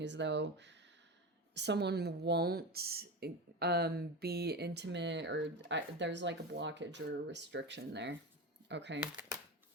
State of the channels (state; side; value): normal; both; correlation 0.22